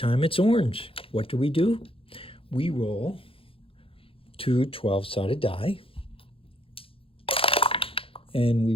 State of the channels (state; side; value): late; right; 0.27 ms